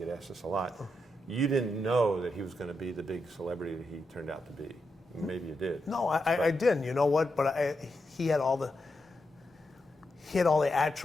asked this a lot, you didn't know that he was going to be the big celebrity that he turned out to be. Maybe you did. No, I didn't. You know what? But he had all the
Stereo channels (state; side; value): normal; both; correlation 0.85